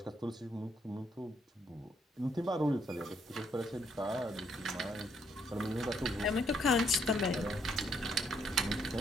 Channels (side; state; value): both; normal; correlation 0.71